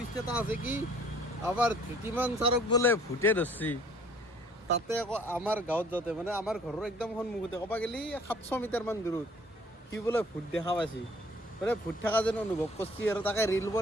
এটা আছে কি, আমাৰ ধৃতিমান ছাৰক বোলে ভূতে ধৰছি। তাতে আকৌ আমাৰ গাঁৱত যাওঁতে, মানে আমাৰ ঘৰৰ একদম সন্মুখতে, ক'ব গ'লে 700 মিটাৰমান দূৰত, সি বোলে ভূত দেখা পাইছি, মানে ভূত থকা যেন অনুভৱ কৰিছি, আৰু তাকে ৰিল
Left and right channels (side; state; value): both; normal; correlation 0.56